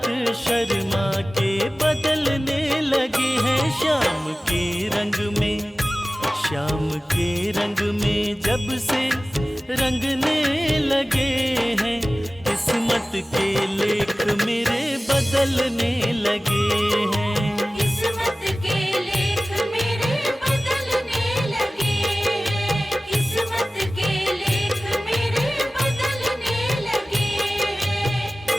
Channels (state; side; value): normal; both; correlation 0.97